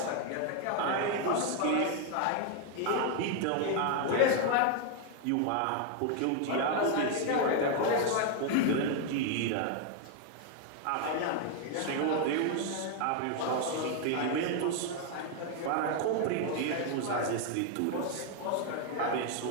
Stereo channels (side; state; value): both; different; correlation 0.01